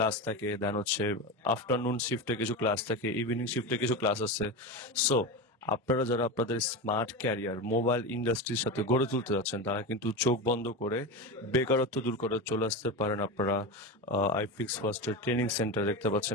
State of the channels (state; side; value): normal; both; correlation 0.21